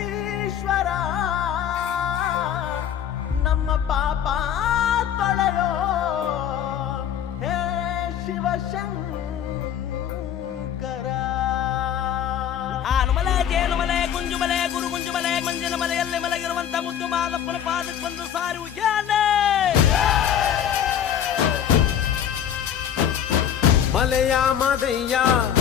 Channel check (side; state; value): right; quieter; 9.5 dB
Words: ನಮ್ಮ ಪಾಪ ತೊಳೆಯೋ ಹೇ ಶಿವಶಂಕರ. ಆನುಮಲೆ ಜೇನುಮಲೆ ಗುಂಜುಮಲೆ ಗುರು ಗುಂಜುಮಲೆ ಮಂಜಿನ ಮಲೆಯಲ್ಲಿ ಮಲಗಿರುವಂತ ಮುದ್ದು ಮಾದಪ್ಪನ ಪಾದಕ್ಕೆ ಬಂದು ಸಾರಿ ಉಜ್ಜಾನೆ. ಮಲೆಯ ಮಾದಯ್ಯ